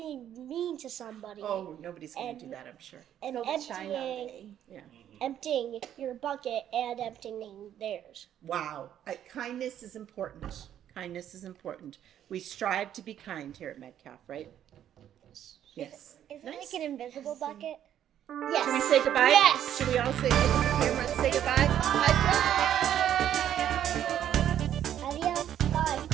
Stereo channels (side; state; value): left; quieter; 10.5 dB